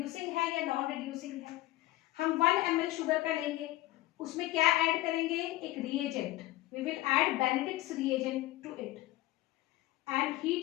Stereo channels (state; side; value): quieter; right; 17.4 dB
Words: है या नॉन रिड्यूसिंग है? हम 1 ml शुगर का लेंगे, उसमें क्या ऐड करेंगे? एक reagent. We will add Benedict's reagent to it and